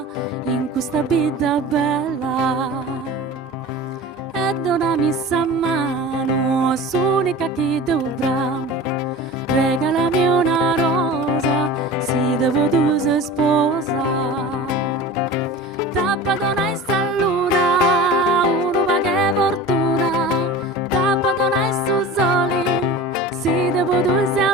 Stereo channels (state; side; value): normal; both; correlation 0.36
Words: in questa vita bella. E donami sa mano, s'unica che dovrà, regalami una rosa, si devo tu sei sposa. Tappa donai sta luna, uno va che fortuna, tappa donai su soli, si devo due